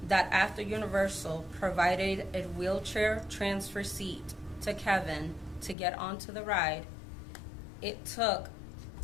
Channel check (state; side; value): drops out; right; at 5.8 s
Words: that after Universal provided a wheelchair transfer seat to Kevin to get onto the ride, it took